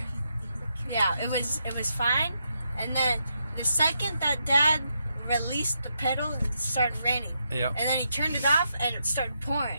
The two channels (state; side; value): inverted; both; correlation -0.81